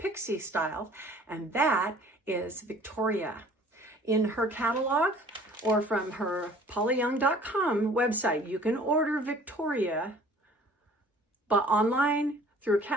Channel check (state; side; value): normal; both; correlation 0.51